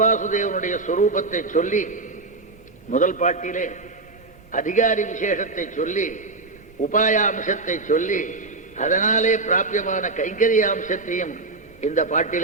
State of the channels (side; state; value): left; quieter; 3.6 dB